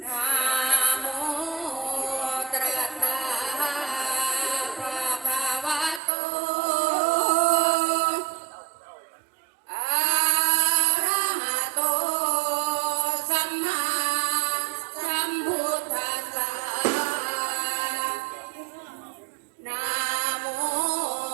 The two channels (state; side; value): drops out; left; at 6.0 s